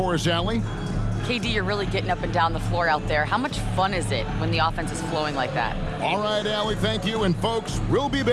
us, Allie? KD, you're really getting up and down the floor out there. How much fun is it when the offense is flowing like that? All right, Allie, thank you. And folks, we'll be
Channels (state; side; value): identical; both; correlation 1.00